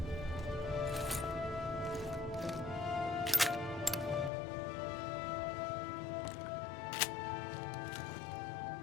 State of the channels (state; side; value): drops out; right; at 4.3 s